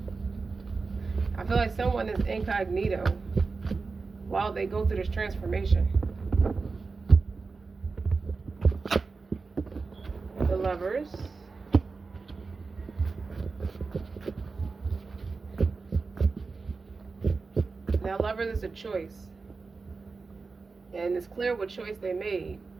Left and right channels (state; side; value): quieter; left; 4.3 dB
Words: I feel like someone is incognito while they go through this transformation. The Lovers. Now, Lovers is a choice. And it's clear what choice they made